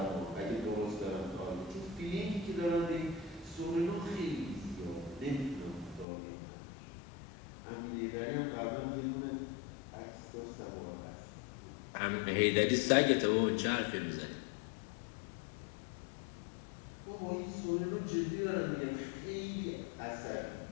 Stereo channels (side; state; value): right; drops out; at 6.1 s